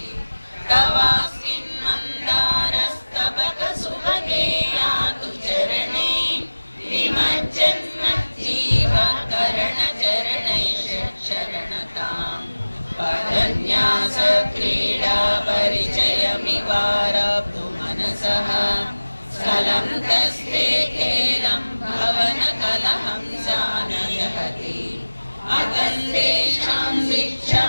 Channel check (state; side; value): inverted; both; correlation -1.00